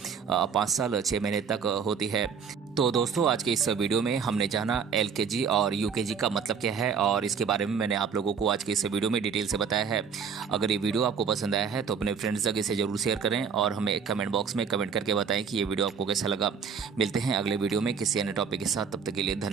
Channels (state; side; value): quieter; left; 6.5 dB